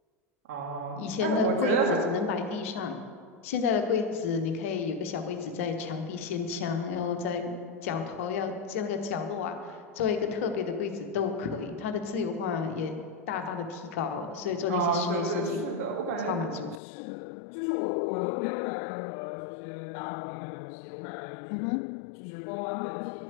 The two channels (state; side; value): drops out; right; at 16.8 s